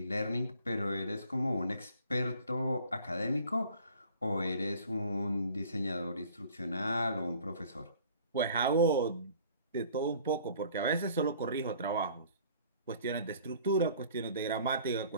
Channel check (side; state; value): both; inverted; correlation -0.52